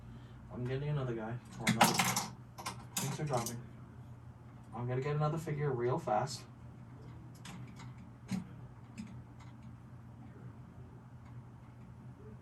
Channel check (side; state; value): both; identical; correlation 1.00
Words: I'm getting another guy. Or another. Things are dropping. I'm gonna get another figure real fast.